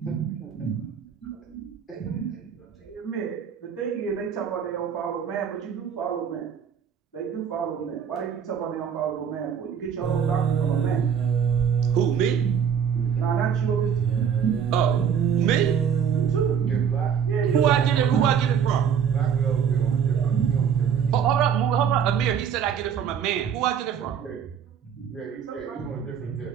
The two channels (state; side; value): quieter; left; 7.7 dB